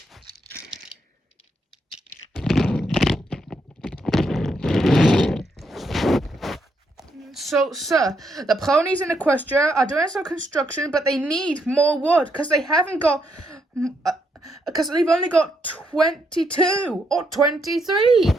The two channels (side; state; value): both; normal; correlation 0.77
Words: So, sir, the ponies in Equestria are doing some construction, but they need more wood because they haven't got, because they've only got 22 or 23.